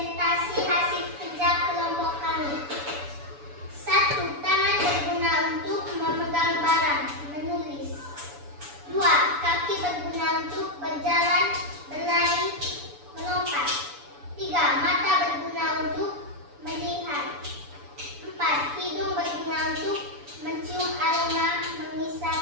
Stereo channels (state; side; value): late; left; 7.0 ms